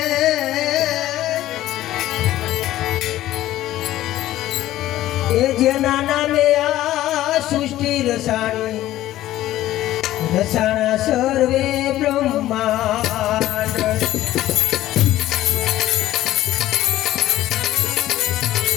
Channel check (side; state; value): right; quieter; 14.5 dB